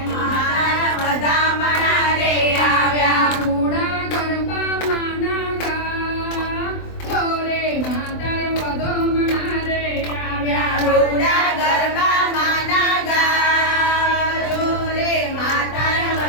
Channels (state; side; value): late; right; 24 ms